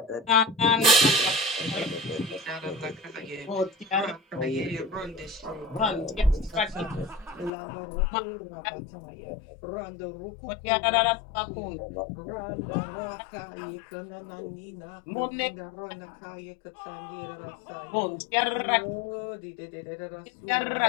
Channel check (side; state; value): right; drops out; at 7.5 s